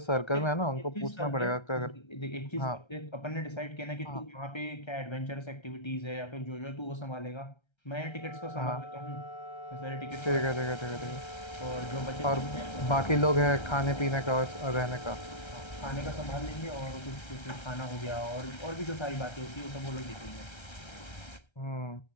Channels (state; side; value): late; right; 1.3 ms